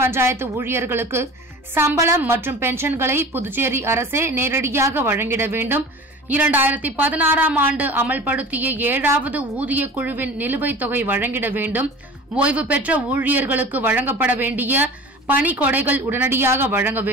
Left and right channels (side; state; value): both; normal; correlation 0.39